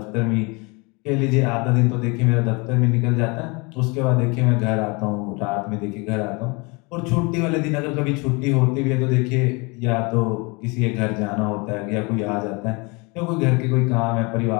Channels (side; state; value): right; quieter; 28.4 dB